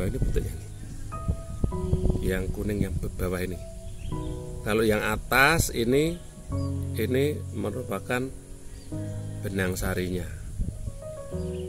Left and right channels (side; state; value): both; identical; correlation 1.00